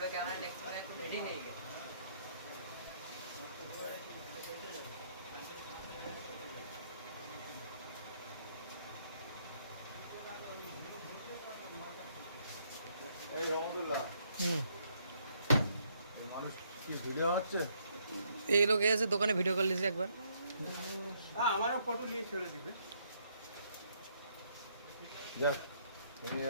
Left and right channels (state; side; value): inverted; both; correlation -0.71